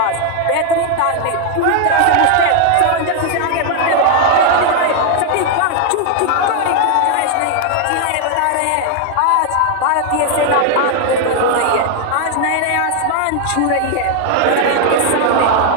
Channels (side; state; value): both; different; correlation 0.00